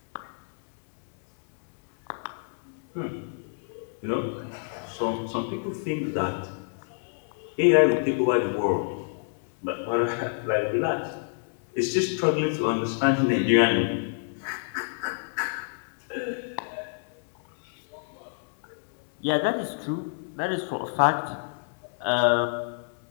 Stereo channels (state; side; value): silent; right; digital silence